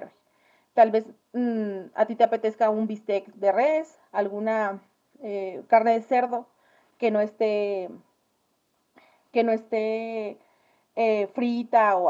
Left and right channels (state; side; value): identical; both; correlation 1.00